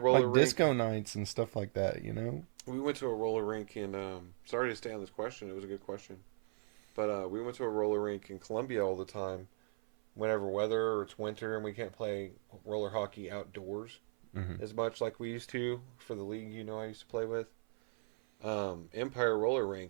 Like rink. disco nights and stuff like that, you know. We went to a roller rink in. Sorry to stay on this question. It was a good question, but we went to a roller rink in Columbia all the time. Whenever weather or it's winter and we can't play roller hockey outdoors Mm-hmm. as much like we used to for the league, I used to play with. Empire Roller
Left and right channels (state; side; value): silent; left; 53 dB below the other